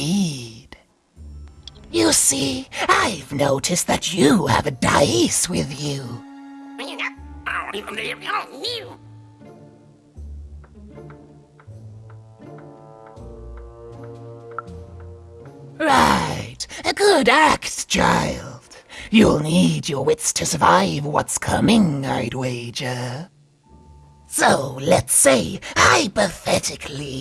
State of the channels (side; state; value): both; identical; correlation 1.00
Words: You see, I've noticed that you have a dice with you. Right, a good act, child. You'll need your wits to survive what's coming, I'd wager. So, let's say,